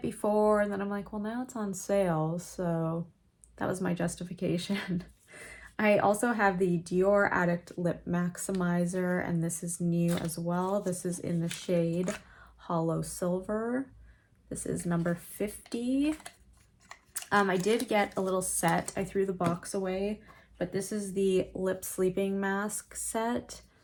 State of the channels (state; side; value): identical; both; correlation 1.00